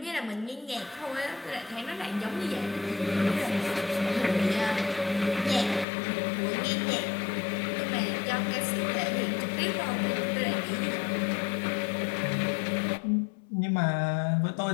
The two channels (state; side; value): drops out; right; at 5.9 s